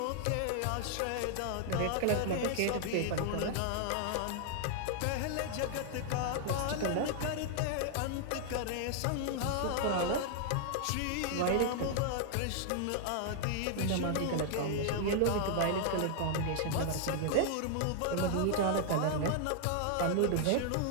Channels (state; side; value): different; both; correlation 0.00